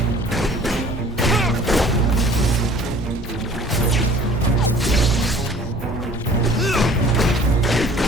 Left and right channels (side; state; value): both; normal; correlation 0.51